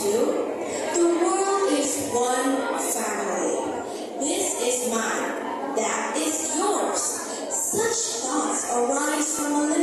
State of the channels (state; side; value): identical; both; correlation 1.00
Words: to, the world is one family. This is mine, that is yours. Such thoughts arise from a